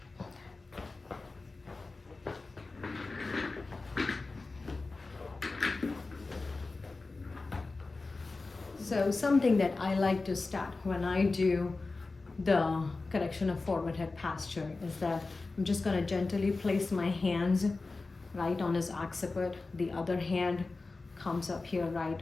So something that I like to start when I do the correction of forward head posture is that I'm just going to gently place my hands right on his occiput. The other hand comes up here right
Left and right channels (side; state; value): right; quieter; 3.6 dB